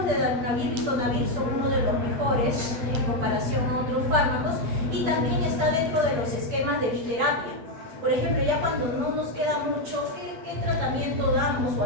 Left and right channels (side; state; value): left; late; 8.6 ms